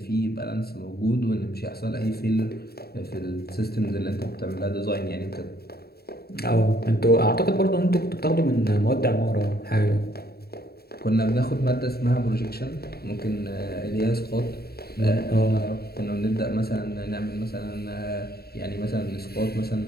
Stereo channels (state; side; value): late; right; 0.46 ms